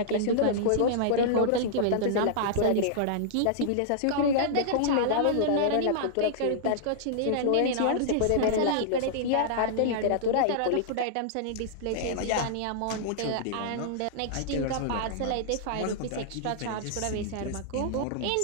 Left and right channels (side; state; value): both; different; correlation -0.02